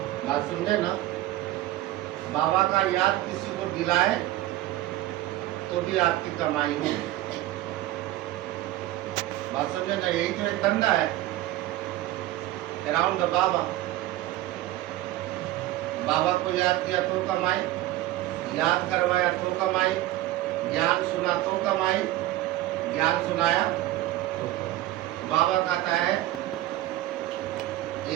बात समझे ना? बाबा का याद किसी को दिलाए तो भी आपकी कमाई हो। बात समझे ना? यही तो एक धंधा है अराउंड द बाबा। बाबा को याद किया तो कमाई, याद करवाया तो कमाई, ज्ञान सुना तो कमाई, ज्ञान सुनाया। बाबा कहता है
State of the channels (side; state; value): left; quieter; 15.5 dB